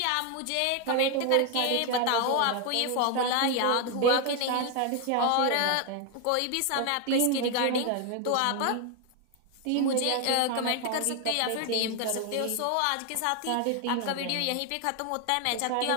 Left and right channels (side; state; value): both; different; correlation 0.01